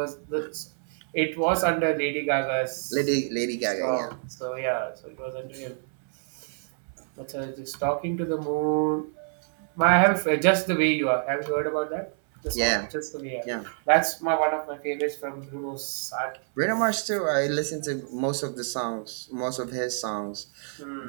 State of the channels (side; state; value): left; silent; 60 dB below the other